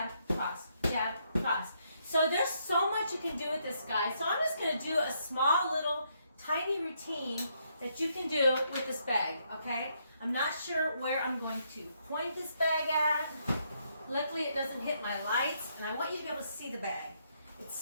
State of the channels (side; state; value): both; inverted; correlation -0.75